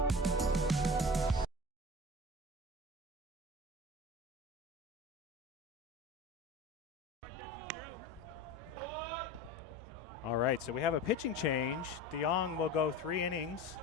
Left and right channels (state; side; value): normal; both; correlation 0.34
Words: All right, so we have a pitching change. DeYoung will go 3 innings.